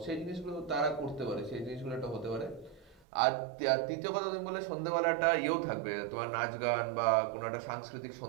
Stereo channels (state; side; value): drops out; left; at 3.0 s